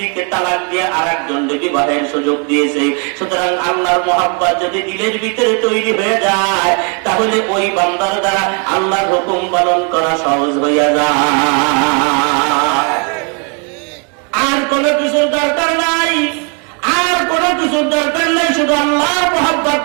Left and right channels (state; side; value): quieter; left; 37.6 dB